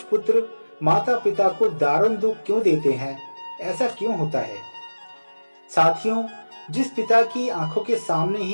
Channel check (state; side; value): inverted; both; correlation -1.00